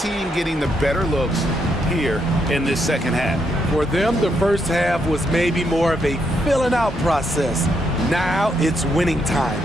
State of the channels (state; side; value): normal; both; correlation 0.78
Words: getting the better looks here in this second half. For them, the first half was maybe more of a filling out process. Now it's winning time.